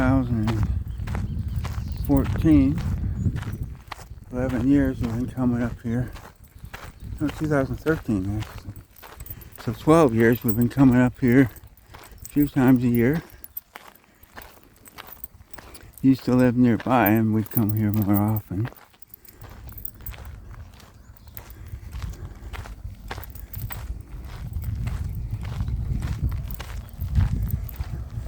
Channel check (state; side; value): identical; both; correlation 1.00